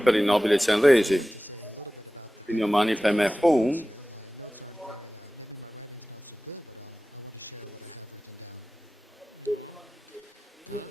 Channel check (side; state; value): both; normal; correlation 0.96